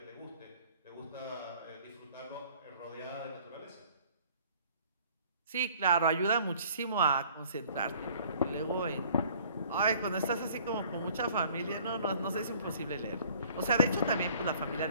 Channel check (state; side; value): inverted; both; correlation -0.55